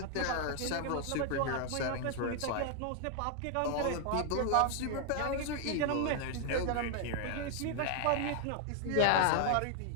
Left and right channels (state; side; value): different; both; correlation 0.00